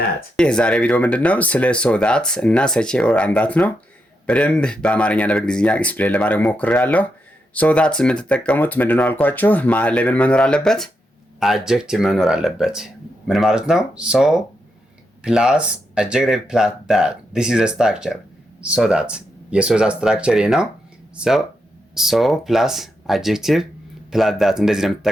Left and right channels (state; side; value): normal; both; correlation 0.83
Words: የዛሬ ቪዲዮ ምንድነው? ስለ ሶ ዳት እና ሰቼ ኦር አን ዳት ነው። በደንብ በአማርኛና በእንግሊዝኛ ኤክስፕሌን ለማድረግ ሞክሬያለሁ። ሶ ዳት የምትጠቀሙት ምንድነው አልኳችሁ? መሀል ላይ ምን መኖር አለበት? አጀክቲቭ መኖር አለበት። ምን ማለት ነው? ሶ ፕላስ አጀክቲቭ ፕላስ ዳት this is a structure። ሶ ዳት የሶ ዳት ስትራክቸር ይሄ ነው። ሶ ፕላስ አጀክቲቭ ፕላስ ዳት እንደዚህ ነው